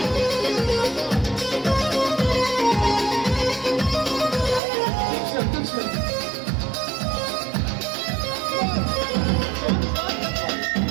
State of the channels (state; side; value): drops out; left; at 4.6 s